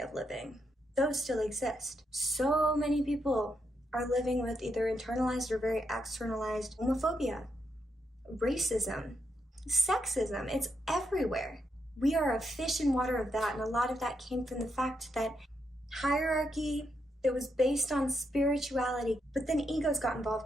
living, those still exist. So many people are living with either internalized or very externalized homophobia, racism, sexism. It's everywhere. We are a fish in water of that, and a lot of that came from the fact that hierarchy that was based on spirituality, but then egos got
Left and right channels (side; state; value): both; normal; correlation 0.81